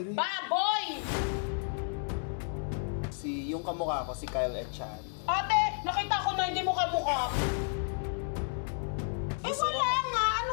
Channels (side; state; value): right; silent; 57 dB below the other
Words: Baboy! Yung kamukha ko, si Kyle Echan. Ate, nakita ko na hindi mo kamukha. Eh wala nga,